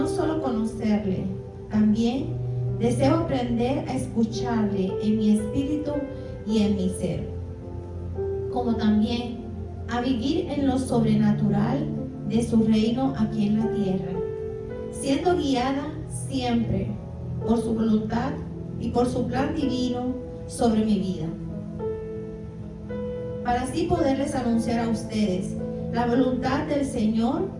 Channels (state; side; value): identical; both; correlation 1.00